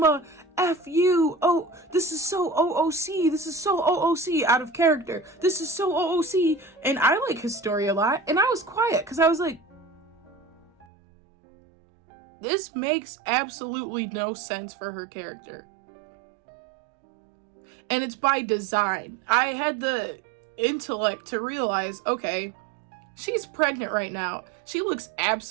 F you. Oh, this is so OOC. This is so OOC, out of character. This is so OOC. And I like Historia a lot. And I was quiet because I was like, this makes absolutely no sense for her character. And it's by design. I had the intellect to realize, okay, she's pregnant right now. She looks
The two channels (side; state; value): left; drops out; at 10.9 s